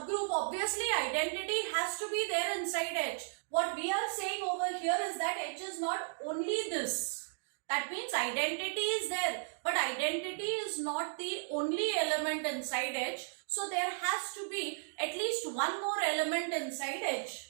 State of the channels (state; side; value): silent; left; digital silence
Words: obviously identity has to be there inside H. What we are saying over here is that H is not only this. That means identity is there, but identity is not the only element inside H. So there has to be at least one more element inside